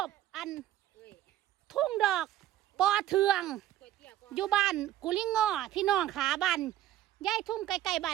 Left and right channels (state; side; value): quieter; left; 12.8 dB